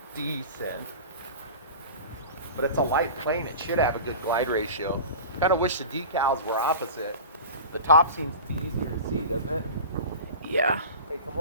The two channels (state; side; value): inverted; both; correlation -0.34